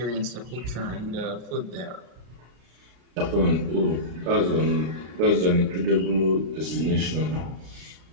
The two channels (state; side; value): late; left; 33 ms